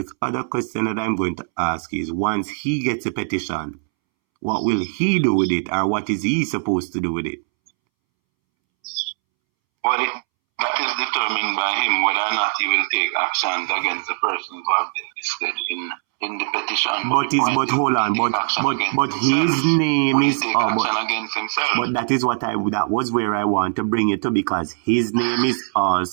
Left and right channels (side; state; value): left; silent; 65 dB below the other